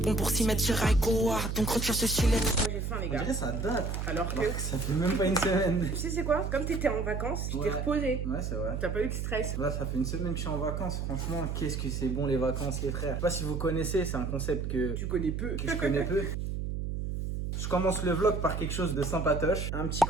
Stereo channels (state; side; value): noise; right; hum, 3 dB below the sound